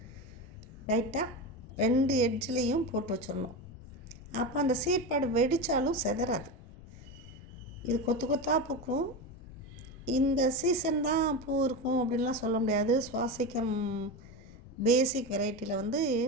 லைட்டாக 2 எட்ஜ்லேயும் போட்டு வச்சிடணும். அப்போ அந்த சீட் பேடு வெடித்தாலும் செதறாது. இது கொத்து கொத்தாக பூக்கும். இந்த சீசன் தான் பூ இருக்கும் அப்படின்லாம் சொல்ல முடியாது. சுவாசிக்கம் பேசிக் வெரைட்டியில் வந்து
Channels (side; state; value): left; noise; rumble, 19 dB below the sound